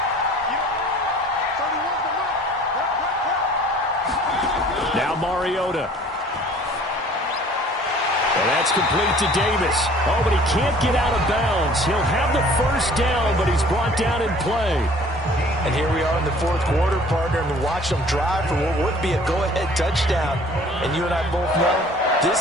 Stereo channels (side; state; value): both; normal; correlation 0.51